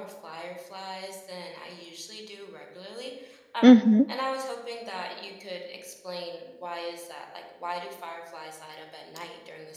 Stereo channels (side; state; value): both; identical; correlation 1.00